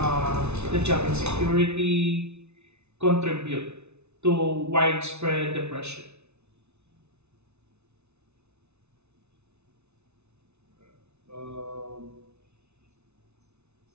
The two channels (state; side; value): late; left; 0.81 ms